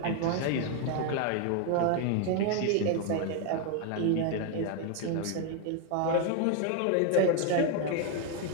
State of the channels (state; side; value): different; both; correlation 0.01